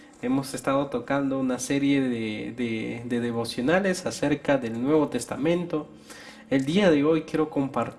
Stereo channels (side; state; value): both; identical; correlation 1.00